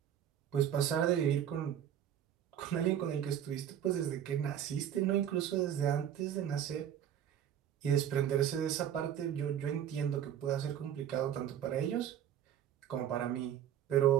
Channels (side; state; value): left; quieter; 10.0 dB